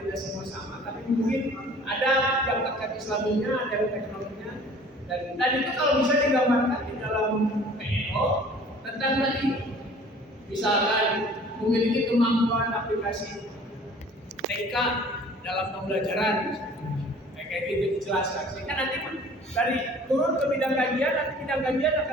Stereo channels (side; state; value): both; normal; correlation 0.49